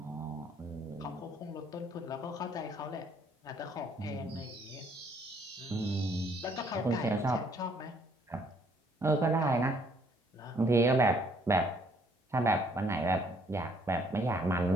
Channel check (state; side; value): normal; both; correlation 0.64